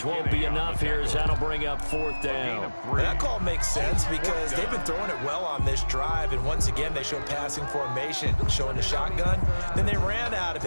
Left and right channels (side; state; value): both; inverted; correlation -1.00